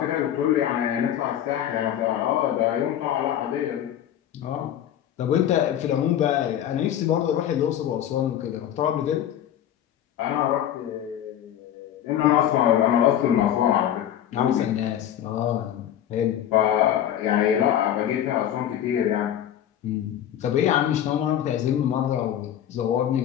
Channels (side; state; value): right; quieter; 10.7 dB